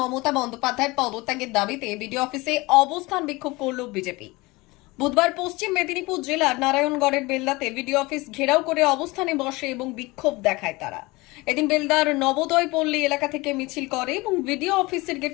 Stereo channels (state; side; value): quieter; right; 22.8 dB